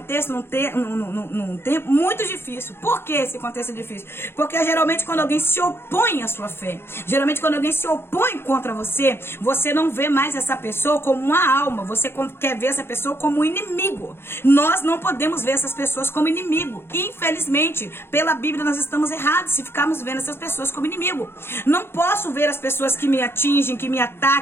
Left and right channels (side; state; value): right; late; 0.11 ms